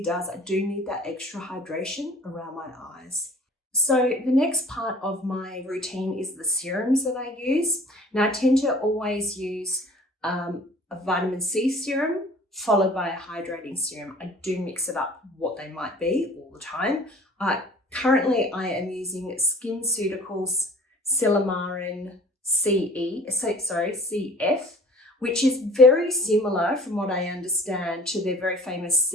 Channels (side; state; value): both; normal; correlation 0.46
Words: does. I do need that extra hydration around my eyes. So the next part of my routine is the serums that I use. Now I tend to always use a vitamin C serum followed by a hydrating serum. I do mix it up what they might be all the time. Currently I am using Skinceutical Silymarin CF, which is very similar from what I understand to their very famous